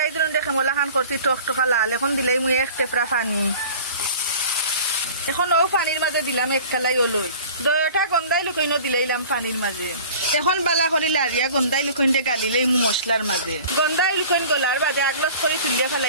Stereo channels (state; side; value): inverted; both; correlation -0.43